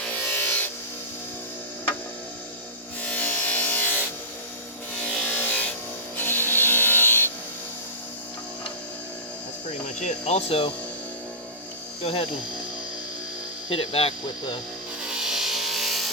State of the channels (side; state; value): both; normal; correlation -0.20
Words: That's pretty much it. Also, go ahead and hit it back with